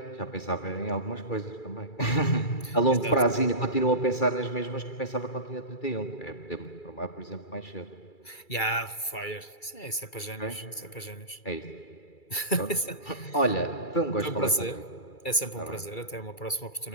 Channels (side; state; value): right; late; 2.3 ms